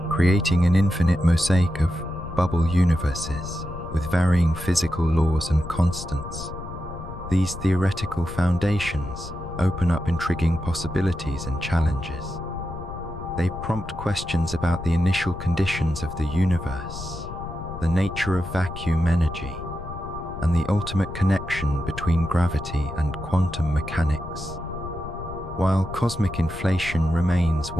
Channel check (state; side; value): noise; left; rumble, 11 dB below the sound